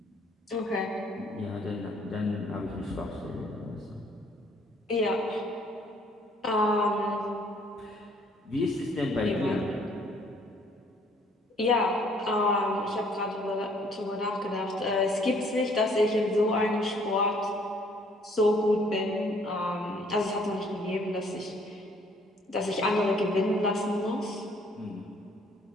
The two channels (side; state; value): both; normal; correlation 0.61